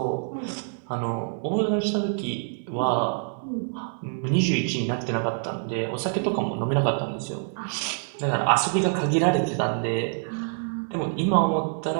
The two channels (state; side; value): silent; left; 61 dB below the other